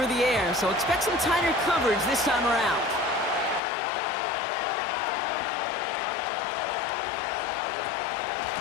the air, so expect some tighter coverage this time around.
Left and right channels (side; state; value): right; drops out; at 3.6 s